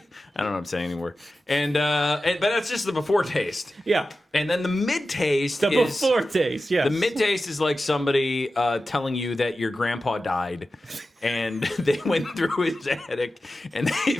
I don't know what I'm saying anymore. But that's just the before taste. Yeah. And then the mid taste The before taste, yes. the mid taste is like somebody telling you that your grandpa died, and they went through his attic and they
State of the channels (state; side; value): normal; both; correlation 0.93